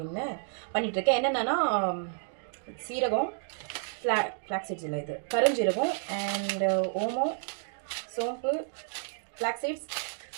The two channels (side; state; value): left; silent; digital silence